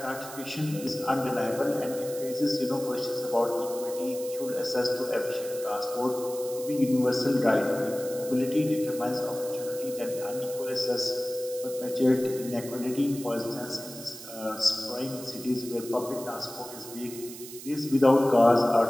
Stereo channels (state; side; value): noise; right; hiss, 13 dB below the sound